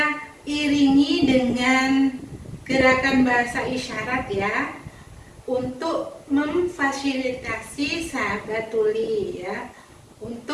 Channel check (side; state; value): both; identical; correlation 1.00